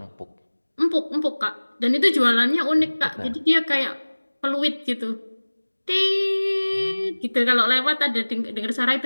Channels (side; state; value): both; inverted; correlation -1.00